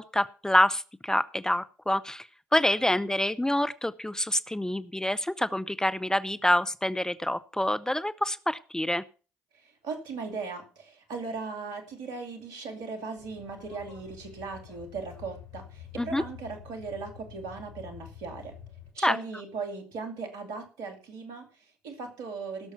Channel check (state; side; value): normal; both; correlation 0.87